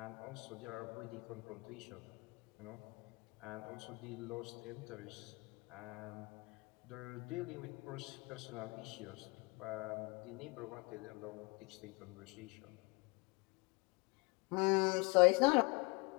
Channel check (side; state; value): right; quieter; 27.4 dB